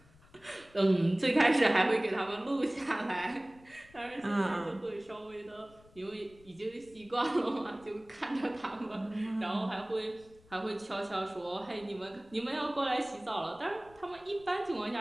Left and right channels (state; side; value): noise; left; rumble, 26 dB below the sound